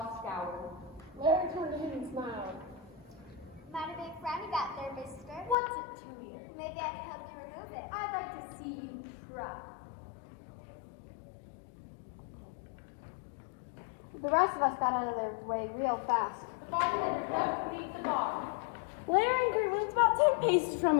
scowl. Larry turned to him and smiled. Mighty big friend you got there, mister. What's it to you? Maybe I can help you remove it. I'd like to see you try. The rest of us got out of their way real fast. The bartender crept beneath the bar. Larry and Kurt lived about 10 paces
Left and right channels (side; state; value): right; drops out; at 5.6 s